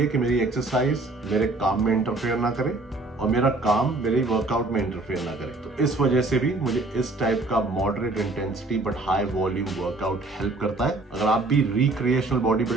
कि मेरी एक्सरसाइज मेरे काम में इंटरफेयर ना करे और मेरा काम मेरे वर्कआउट में इंटरफेयर ना करे। तो इस वजह से भी मुझे इस टाइप का moderate intensity but high volume workout help करता है। अगर आप भी रिक्रिएशनल बॉडी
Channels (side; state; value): left; quieter; 3.1 dB